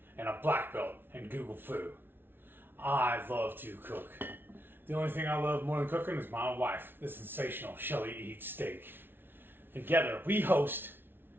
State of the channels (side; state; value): left; late; 0.10 ms